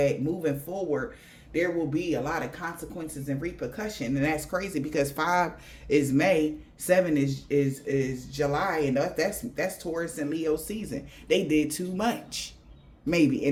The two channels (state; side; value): identical; both; correlation 1.00